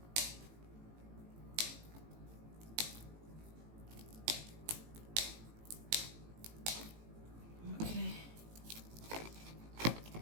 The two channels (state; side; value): late; left; 18 ms